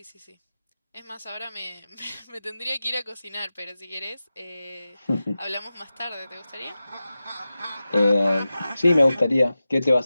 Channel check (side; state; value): both; inverted; correlation -0.94